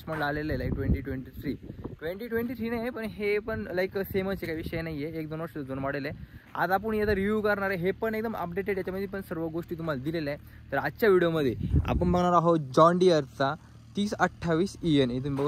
मॉडेल आलेलं आहे 2023 नाही, पण हे पण लाईक सेमच काही विषय नाही आहे. 1-2 वर्ष जुनं मॉडेल आहे. आज आपण याचा रिव्ह्यू करणार आहे. हे पण एकदम अपडेटेड, याच्यामध्ये पण सर्व गोष्टी तुम्हाला दिलेल्या आहे. तर आजच्या व्हिडिओमध्ये आपण बघणार आहोत जॉन डियरचा 3028 EN. इथून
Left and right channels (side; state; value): both; identical; correlation 1.00